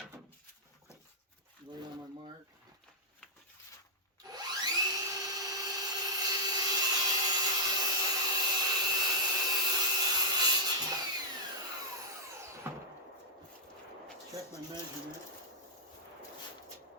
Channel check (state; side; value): normal; both; correlation -0.09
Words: Right on my mark. Check my measurement.